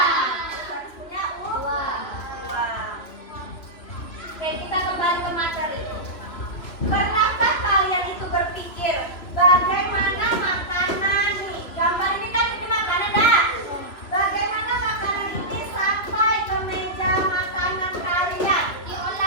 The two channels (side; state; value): right; late; 2.9 ms